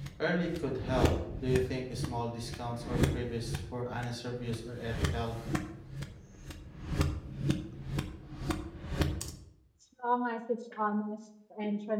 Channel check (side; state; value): both; identical; correlation 1.00